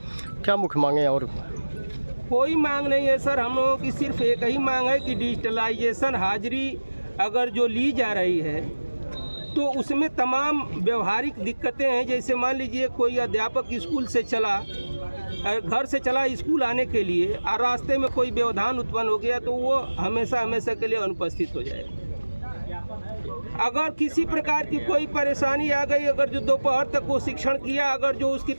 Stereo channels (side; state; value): both; inverted; correlation -1.00